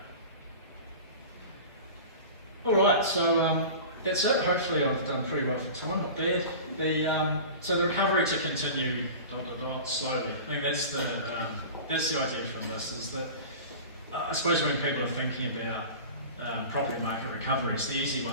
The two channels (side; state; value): both; inverted; correlation -0.35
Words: All right, so that's it. Hopefully I've done pretty well for time, not bad. So the recovery to continue slowly. I think that's the idea from this, is that I suppose when people are thinking about property market recovery, it's the easy